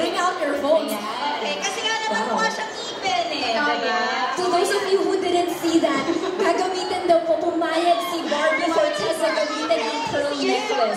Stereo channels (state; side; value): identical; both; correlation 1.00